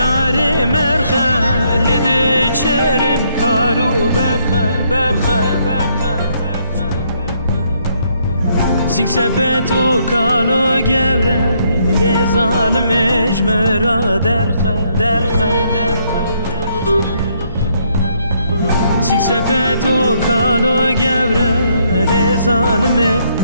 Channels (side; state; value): both; inverted; correlation -0.71